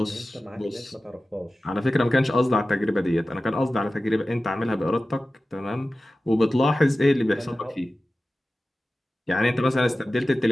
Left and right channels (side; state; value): both; normal; correlation 0.95